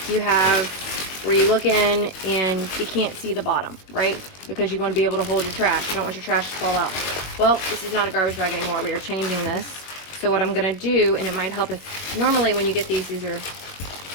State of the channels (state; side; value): late; right; 21 ms